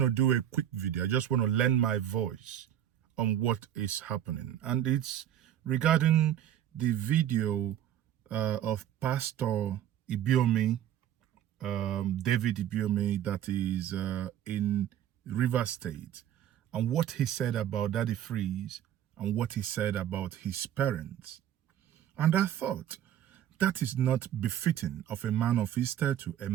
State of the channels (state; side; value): quieter; left; 10.8 dB